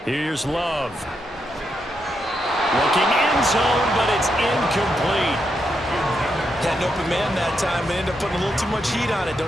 Here's Love. Looking end zone, but it's incomplete. Had an open man that time, but ended up putting a little too much heat on it,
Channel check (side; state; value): both; normal; correlation 0.82